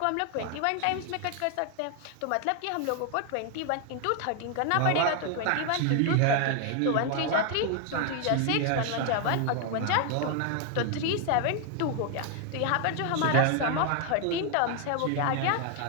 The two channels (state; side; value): different; both; correlation 0.00